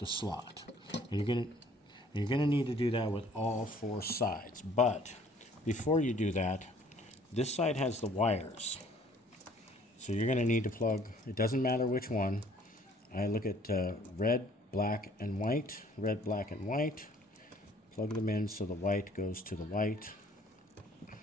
slot. And you're gonna need to do that with all 4 sides. But before you do that, this side has the wires. So you're gonna need to plug, it doesn't matter which one. I look at red, black, and white. Red, black, and white. Plug them in so the white goes to the white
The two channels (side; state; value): both; normal; correlation 0.57